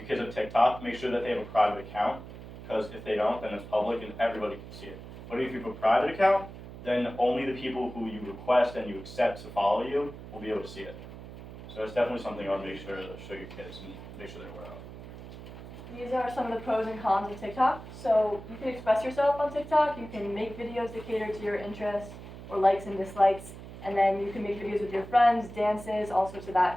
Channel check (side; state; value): right; noise; hum, 13 dB below the sound